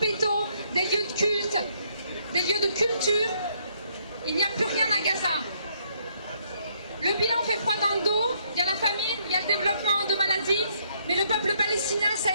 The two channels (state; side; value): inverted; both; correlation -0.69